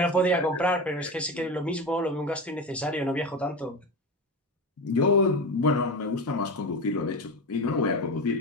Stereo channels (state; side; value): normal; both; correlation 0.22